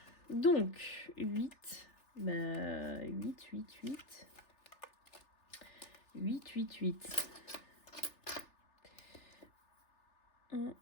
Donc, 8. Bah, 8, 8, 8. 8, 8, 8. 1,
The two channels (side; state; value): right; late; 3.4 ms